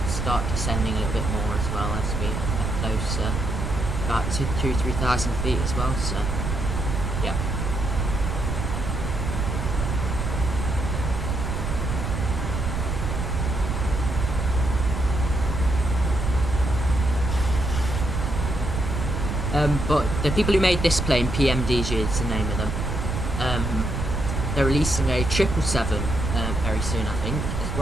start descending a little bit more as well as we get closer, about 2,000–3,000 feet as well. So, yeah. But the people who made this plane, PMDG is the name of them. They're releasing a 777 very soon, I think, as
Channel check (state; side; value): noise; right; rumble, 2 dB below the sound